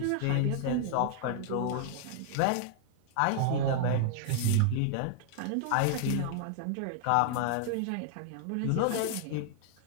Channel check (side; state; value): both; different; correlation 0.00